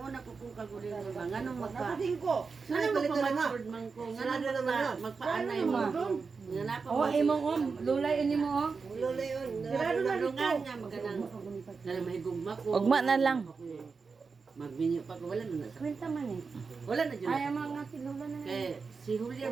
una ko kung kagurin ko ba, nganong Nganong magpa-password man ko, nganong magpaanay mo. Oh, imong lulay ini mo oh. Lulay on. Grado na nga maganang. Dala may gugma ko. Ugma na lang. Magminyo pa ko, wala na sa. Quinta man eh. Wala na dyan. Ay, mga si Lola na lang. Kaya si Julia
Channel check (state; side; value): quieter; left; 4.9 dB